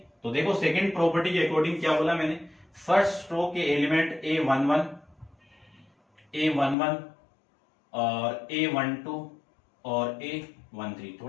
तो देखो सेकंड प्रॉपर्टी के अकॉर्डिंग क्या बोला मैंने, फर्स्ट रो के एलिमेंट A11, A11 और A12 और A13,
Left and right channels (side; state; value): right; drops out; at 6.8 s